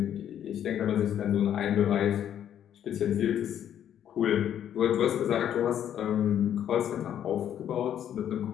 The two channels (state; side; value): quieter; right; 10.0 dB